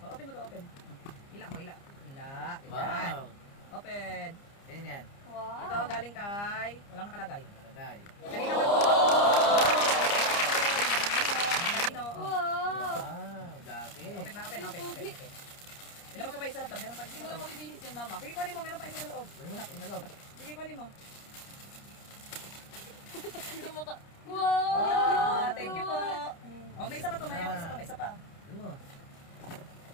Open mo to, open. Ila mo, ila. Ila. Ayan. Wow. Open. Yan yan. Wow. Ito galing kay, walang nakalagay. Nakalagay. Kanina man po. Kanino. Wow. Wow. Jacket. Open na, open. Ilabas mo pa isa laptop, meron pa isa Hindi sa mo lang loob. mabibihis yan, mama. Sige, kunin mo, meron pa isa sa loob. Wala na. Inalog. Sige, kunin mo. Hindi mo ka... Wow! Thank you po. Oh, may isa pa to, may isa pa. Ano?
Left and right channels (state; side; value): late; right; 30 ms